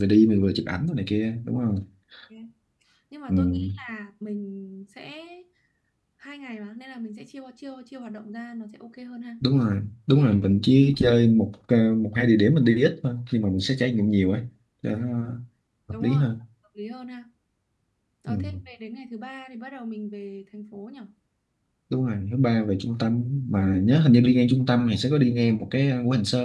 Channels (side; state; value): both; identical; correlation 1.00